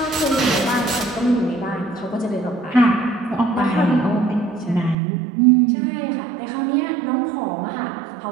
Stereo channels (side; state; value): left; drops out; at 5.0 s